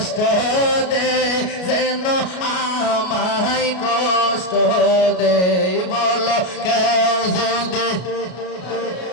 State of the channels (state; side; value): late; right; 33 ms